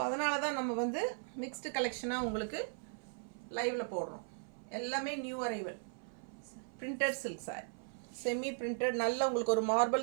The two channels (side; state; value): left; silent; 53 dB below the other